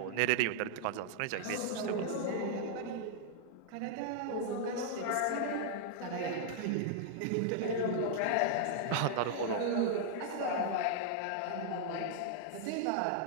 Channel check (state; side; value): different; both; correlation -0.01